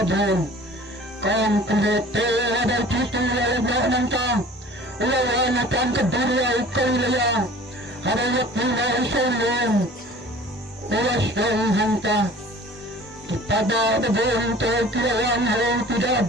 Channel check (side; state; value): both; normal; correlation 0.46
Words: Kang kulete ada ukisu lagi nangkang. Lawan akan kedua kaya ada waktu lain ulas hanta kepada bentuk kelawan hal tidak